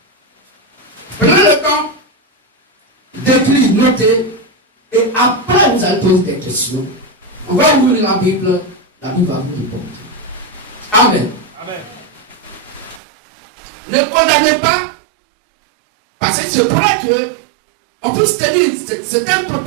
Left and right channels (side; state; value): left; drops out; at 13.0 s